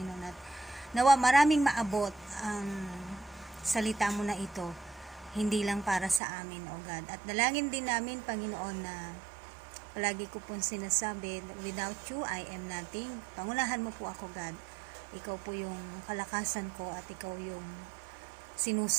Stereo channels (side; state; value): left; drops out; at 6.2 s